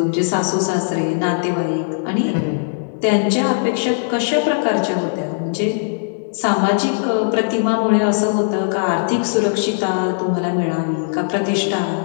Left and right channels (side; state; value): right; silent; digital silence